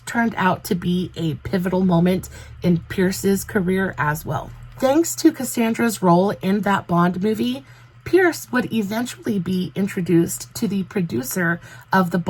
turned out to be a pivotal moment in Pierce's career as well. Thanks to Cassandra's role in that Bond movie, Pierce would eventually be introduced to the producer of the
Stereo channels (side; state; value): both; identical; correlation 1.00